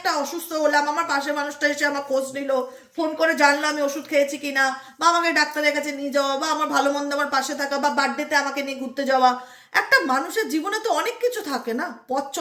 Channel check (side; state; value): both; identical; correlation 1.00